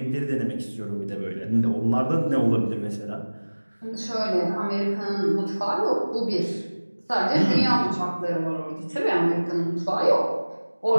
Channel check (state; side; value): inverted; both; correlation -1.00